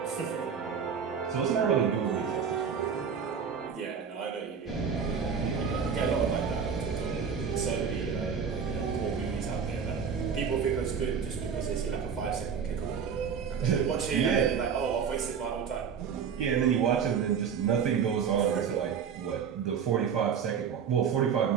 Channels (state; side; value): quieter; left; 6.9 dB